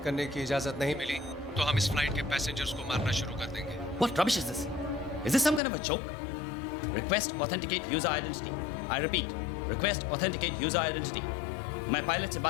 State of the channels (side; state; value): right; drops out; at 5.6 s